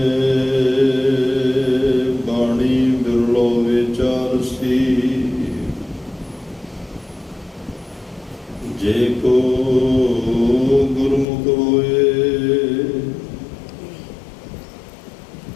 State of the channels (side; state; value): right; drops out; at 11.2 s